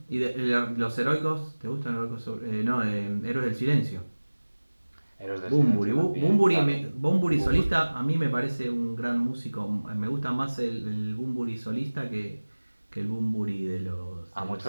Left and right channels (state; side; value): inverted; both; correlation -1.00